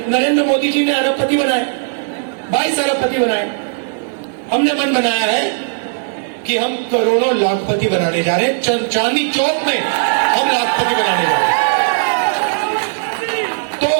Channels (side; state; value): left; silent; 59 dB below the other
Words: नरेंद्र मोदी जी ने अरबपति बनाए, 22 अरबपति बनाए। हमने मन बनाया है कि हम करोड़ों लाखपति बनाने जा रहे हैं। चांदनी चौक में हम लाखपति बनाने जा रहे हैं। तो